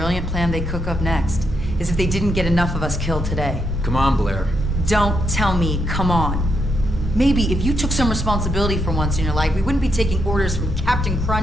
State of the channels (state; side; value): normal; both; correlation 0.79